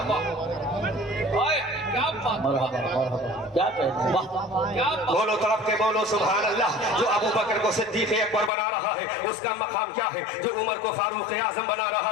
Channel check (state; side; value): drops out; right; at 8.5 s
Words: واہ۔ ओए, क्या बात, मरहबा मरहबा, क्या कहते हैं, वाह, क्या बात। बोलो तड़प के बोलो सुभान अल्लाह। जो अबू बकर को सिद्दीक अकबर बना रहा है उसका मकाम क्या है? जो उमर को फारूक आजम बना रहा